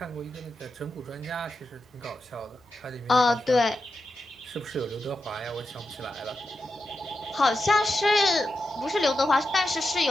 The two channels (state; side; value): normal; both; correlation 0.89